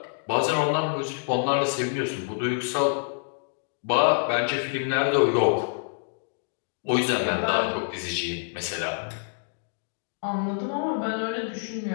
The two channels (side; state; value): right; silent; digital silence